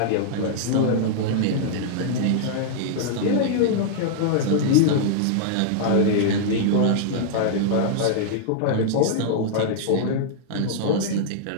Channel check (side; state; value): both; different; correlation -0.01